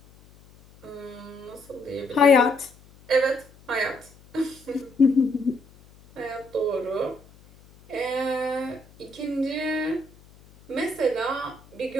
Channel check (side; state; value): left; noise; hum, 25 dB below the sound